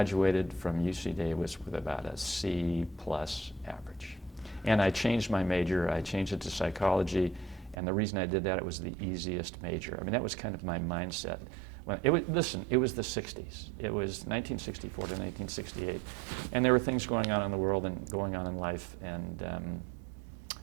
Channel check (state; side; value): drops out; left; at 7.8 s